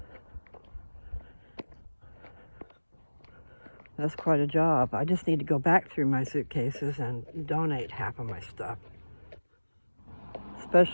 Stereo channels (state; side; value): inverted; both; correlation -1.00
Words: That's quite a job. I just need to go back through my suitcases and donate half of my stuff.